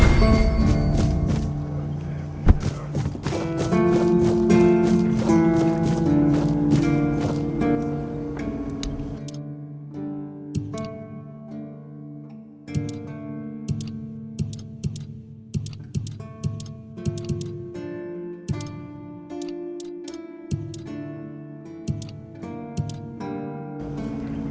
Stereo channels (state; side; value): identical; both; correlation 1.00